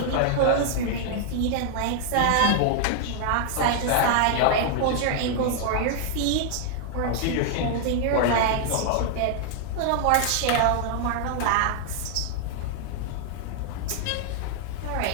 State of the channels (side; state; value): both; different; correlation 0.00